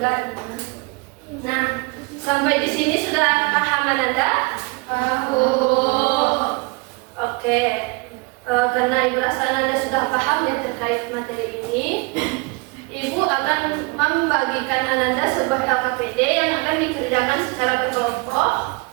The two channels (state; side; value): quieter; left; 28.7 dB